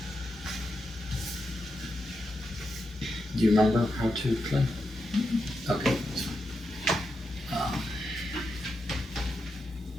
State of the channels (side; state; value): both; normal; correlation 0.86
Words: do you remember how to play? Okay, that's fine.